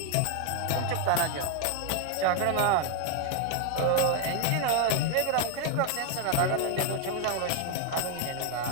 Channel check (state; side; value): different; both; correlation 0.01